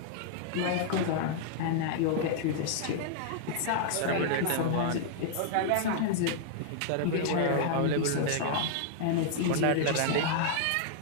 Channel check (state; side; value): different; both; correlation -0.01